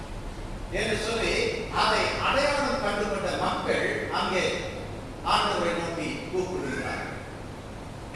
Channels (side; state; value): both; identical; correlation 1.00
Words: என்று சொல்லி அதை அடையாளம் கண்டுகொண்ட மக்கள் அங்கே ஆண்டவரை நோக்கி கூப்பிடுகிறார்.